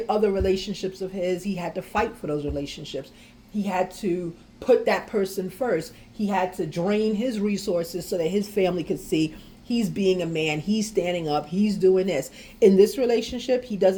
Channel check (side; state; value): both; identical; correlation 1.00